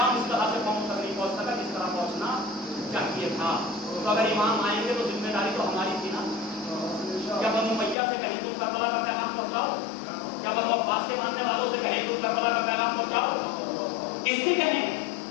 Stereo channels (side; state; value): right; drops out; at 8.0 s